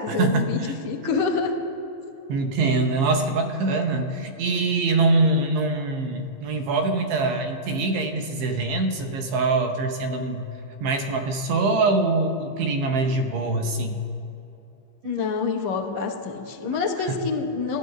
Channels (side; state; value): left; late; 15 ms